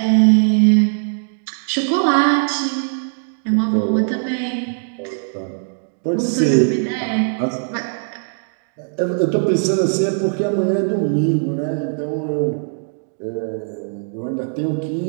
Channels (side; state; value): left; silent; digital silence